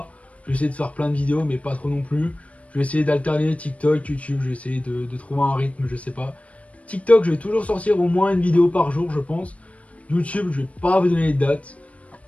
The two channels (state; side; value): late; right; 0.065 ms